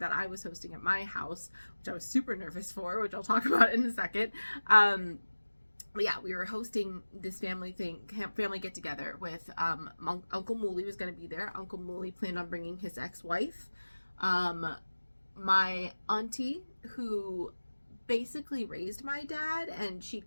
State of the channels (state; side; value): inverted; both; correlation -1.00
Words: I was hosting at my house, which I was super nervous for, which I'll talk about in a second. But yeah, we were hosting this family get together with Uncle Mooley was going to be there. Uncle Mooley planned on bringing his ex-wife, my auntie, who basically raised my dad, and she